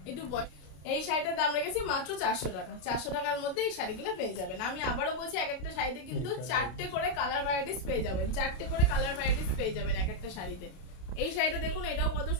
একটু এই শাড়িটার দাম রেখেছি মাত্র 400 টাকা। 400 টাকার মধ্যে এই শাড়িগুলো পেয়ে যাবেন। আমি আবারও বলছি, এক একটা শাড়িতে কিন্তু 4টে করে কালার ভ্যারাইটিস পেয়ে যাবেন, 4টে করে কালার ভ্যারাইটিস পেয়ে যাবেন এক একটা শাড়িতে। এই শাড়িটা দেখুন, এটাও কত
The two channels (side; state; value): right; late; 32 ms